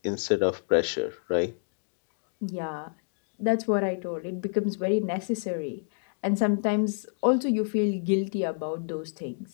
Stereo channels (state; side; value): silent; right; digital silence